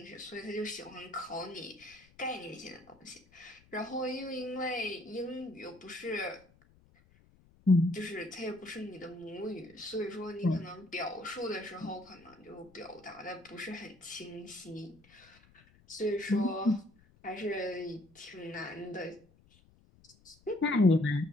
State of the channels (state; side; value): noise; left; rumble, 28 dB below the sound